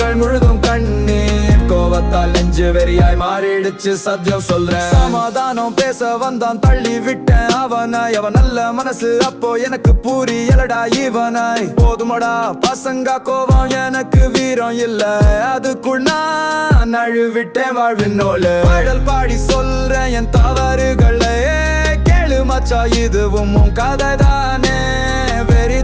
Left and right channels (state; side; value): identical; both; correlation 1.00